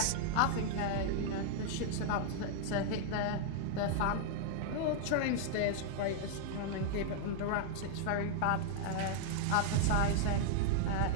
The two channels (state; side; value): different; both; correlation -0.01